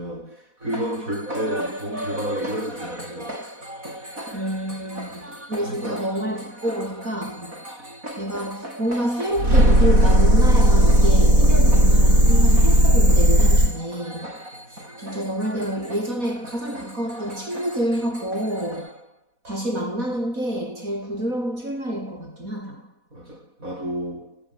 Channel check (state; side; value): late; left; 4.1 ms